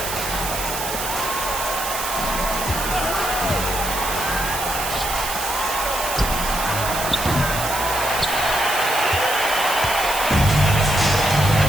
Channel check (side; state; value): right; noise; hiss, 5 dB below the sound